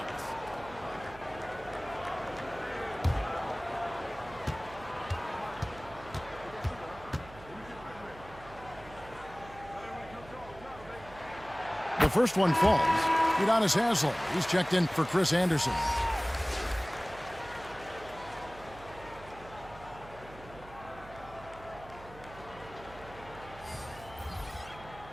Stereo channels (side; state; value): right; noise; hum, 18 dB below the sound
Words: The first one falls. Udonis Haslem. He's checked in for Chris Anderson.